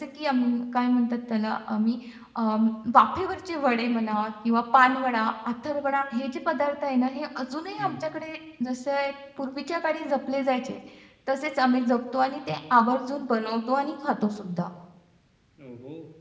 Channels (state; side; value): identical; both; correlation 1.00